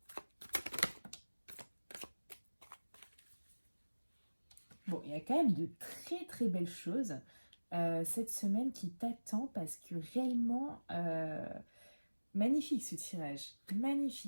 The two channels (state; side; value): inverted; both; correlation -1.00